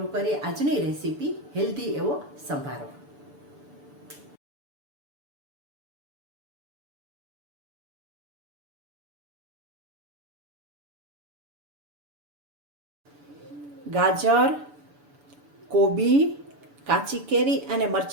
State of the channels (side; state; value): left; late; 6.9 ms